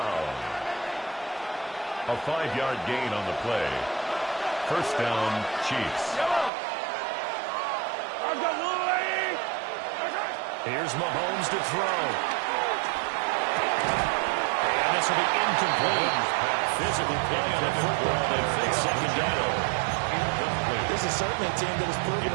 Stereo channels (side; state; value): left; drops out; at 6.5 s